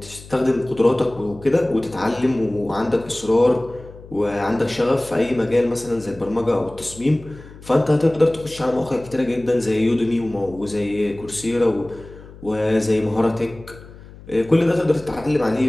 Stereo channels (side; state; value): left; noise; hum, 19 dB below the sound